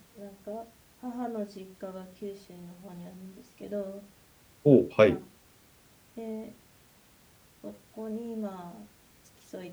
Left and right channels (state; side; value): identical; both; correlation 1.00